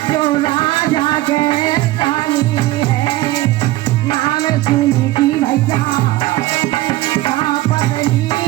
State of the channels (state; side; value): quieter; left; 17.4 dB